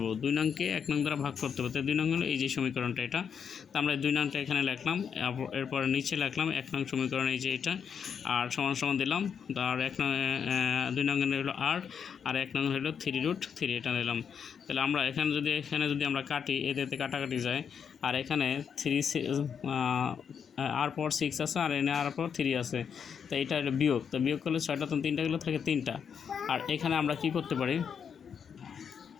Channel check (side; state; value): right; quieter; 7.2 dB